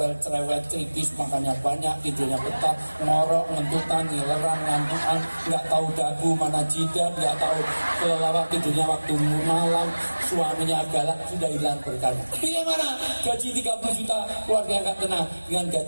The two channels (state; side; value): inverted; both; correlation -1.00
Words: cerewet, kritis, makannya banyak, tidurnya betah, ngorok, ngentutan, ngileran, ngantukan, nggak tahu dagu mana jidat, nggak tahu kelelawar, tidurnya waktu malam, suaminya galak, sudah hilang berkahnya. Pilih mana? Gaji 30 juta, keluarga nggak tenang, dengan